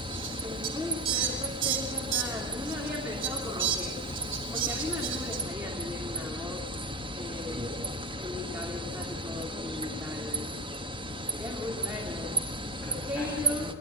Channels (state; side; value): normal; both; correlation 0.21